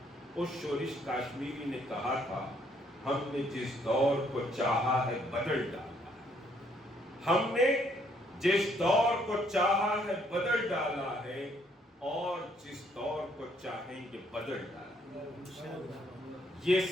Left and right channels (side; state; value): both; normal; correlation 0.68